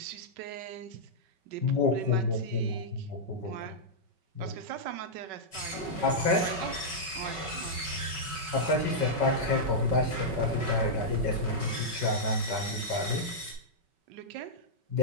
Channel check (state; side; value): late; left; 5.3 ms